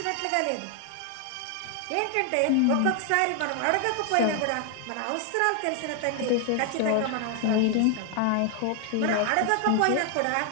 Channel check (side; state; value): both; different; correlation 0.00